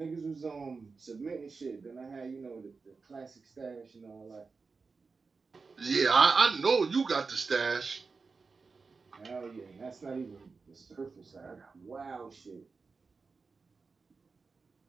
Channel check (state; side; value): quieter; left; 4.5 dB